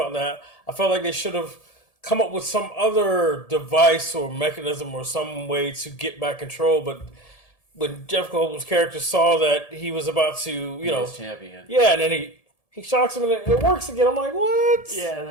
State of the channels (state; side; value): late; right; 1.7 ms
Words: that. I felt like they should have come up with some other device or mechanism or some way to get back control. But when Jeff Goldblum's character saw that he was about to, champion. Yeah, and then he shocks him and it works again. I'm like, what?